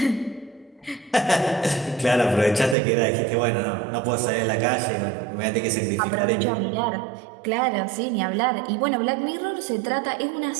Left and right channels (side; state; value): left; drops out; at 2.8 s